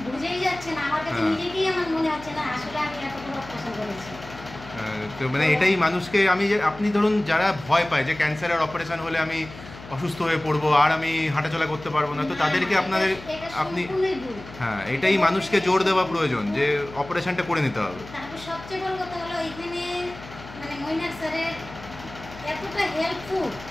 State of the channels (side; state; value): left; noise; hum, 16 dB below the sound